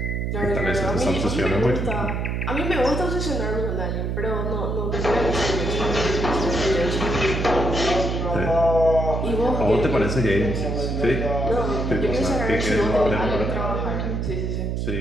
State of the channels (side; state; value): right; noise; hum, 1 dB below the sound